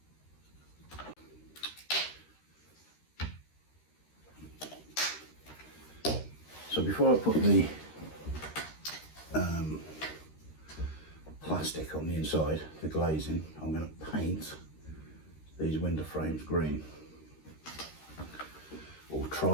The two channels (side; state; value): right; late; 13 ms